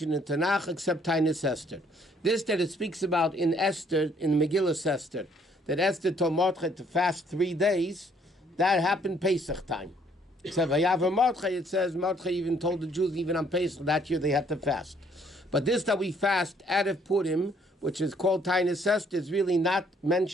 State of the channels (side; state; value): both; normal; correlation 0.64